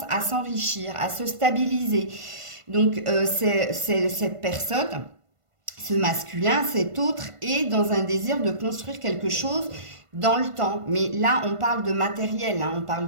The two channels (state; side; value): late; left; 1.5 ms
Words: à s'enrichir, à se stabiliser. Donc, c'est cette personne, ce masculin, cet autre, est dans un désir de construire quelque chose dans le temps. Mais là, on parle de matériel, on ne